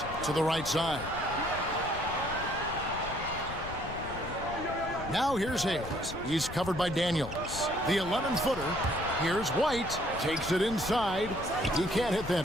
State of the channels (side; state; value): left; noise; rumble, 11 dB below the sound